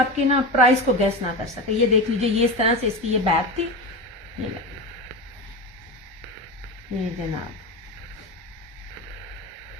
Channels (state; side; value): normal; both; correlation 0.22